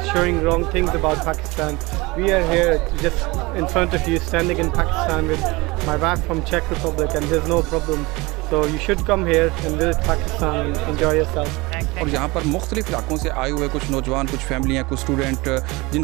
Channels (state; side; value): quieter; left; 23.4 dB